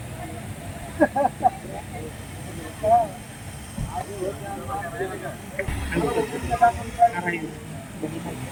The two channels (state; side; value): identical; both; correlation 1.00